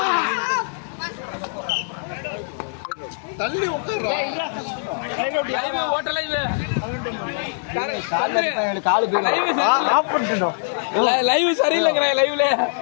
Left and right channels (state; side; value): silent; right; 62 dB below the other